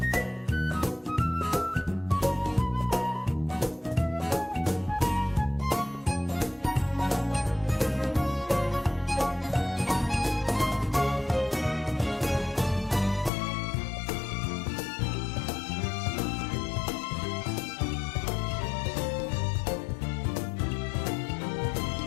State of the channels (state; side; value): drops out; right; at 13.3 s